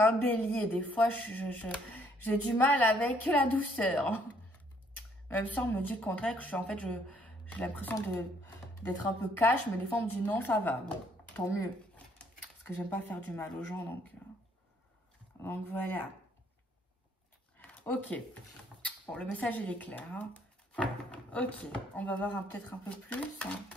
un bélier. Des fois, j'ai du mal avec la douceur. Même si on me dit le contraire, que je suis, en fait, j'ai l'impression d'être un peu cash, mais des fois, on me dit non, ça va. Bon, tant mieux. Parce que j'aime pas faire du mal aux gens, donc voilà. Ok. Bon, le message, il est clair, hein. Ok, on va voir peut-être un peu plus, hein.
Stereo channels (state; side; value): normal; both; correlation 0.66